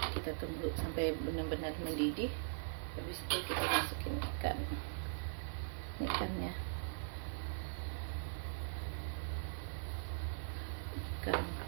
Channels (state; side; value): silent; left; digital silence